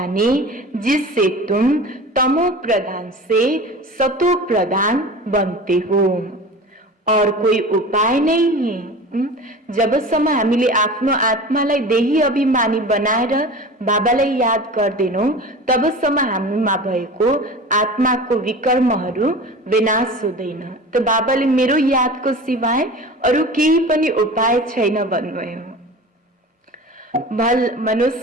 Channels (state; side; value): normal; both; correlation 0.36